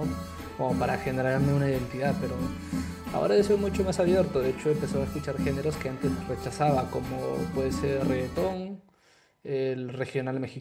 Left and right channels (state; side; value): identical; both; correlation 1.00